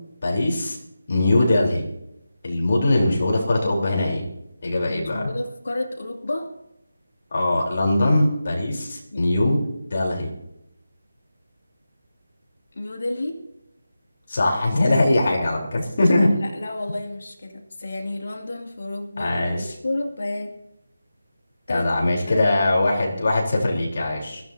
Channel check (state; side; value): inverted; both; correlation -0.92